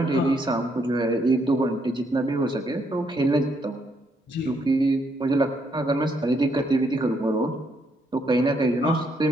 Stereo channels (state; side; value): normal; both; correlation 0.74